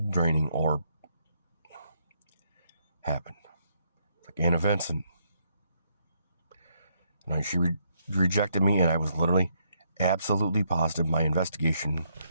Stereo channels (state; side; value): inverted; both; correlation -0.74